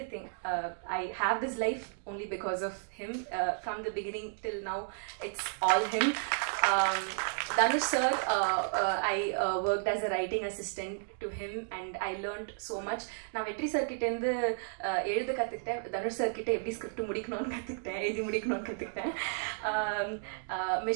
I have this life only because of him. From the beginning till now, it's all him. Dhanush sir, I worked as a writing assistant to him and I learned so much. நான் வெற்றி sir கிட்ட இருந்து எழுத கற்றுக்கிட்டேன், Dhanush sir கிட்ட எப்படி script முடிக்கணும்னு கற்றுக்கிட்டேன், எழுதி முடிக்கணும்னு கற்றுக்கிட்டேன்.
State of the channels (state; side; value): silent; left; digital silence